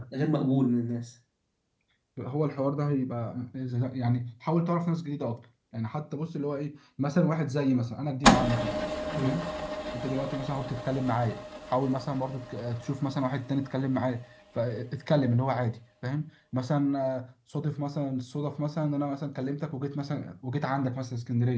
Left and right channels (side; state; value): both; identical; correlation 1.00